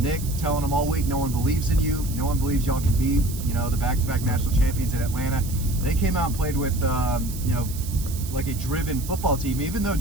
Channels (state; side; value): noise; right; hiss, 12 dB below the sound